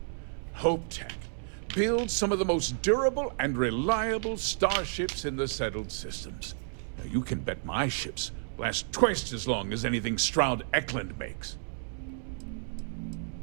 HopeTech builds some of the most durable and reliable starships in the settled systems. Now, you can bet my ships last twice as long as anything Stroud Eklund makes.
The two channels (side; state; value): left; silent; digital silence